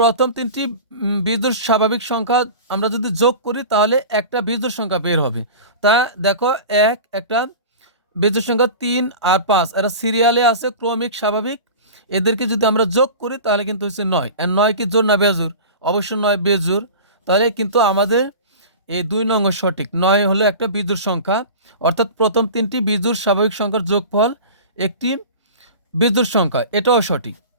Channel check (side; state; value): both; inverted; correlation -0.34